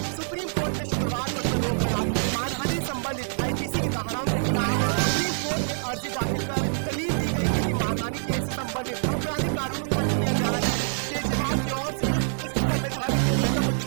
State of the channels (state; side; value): silent; left; digital silence